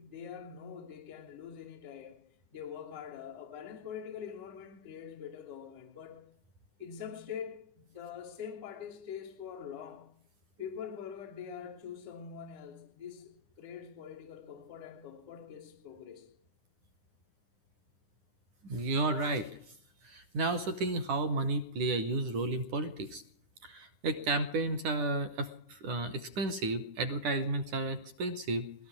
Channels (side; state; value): left; late; 10 ms